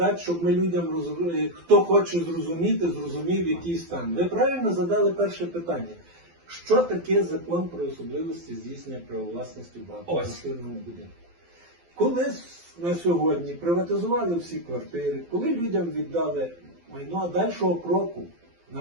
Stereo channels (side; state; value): left; late; 12 ms